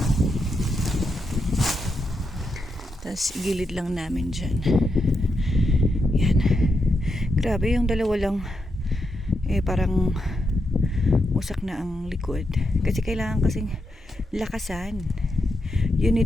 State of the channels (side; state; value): both; normal; correlation 0.84